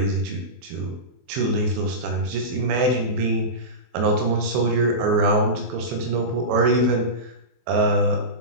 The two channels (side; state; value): left; late; 23 ms